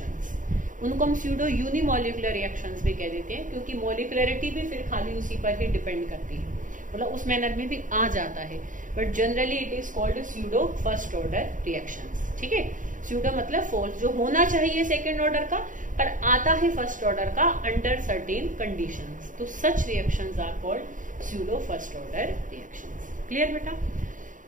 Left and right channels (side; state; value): left; late; 0.38 ms